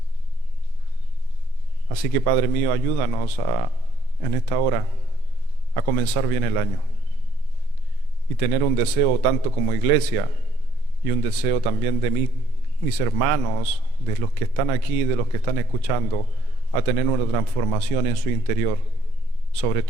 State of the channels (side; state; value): both; normal; correlation 0.67